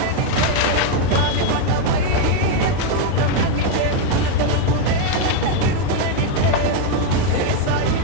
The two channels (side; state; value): both; different; correlation 0.01